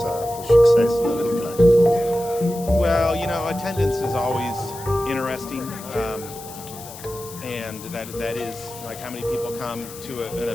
success that look like? Well, attendance is always interesting, and that is like how many people come to an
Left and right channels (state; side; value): noise; left; hiss, 15 dB below the sound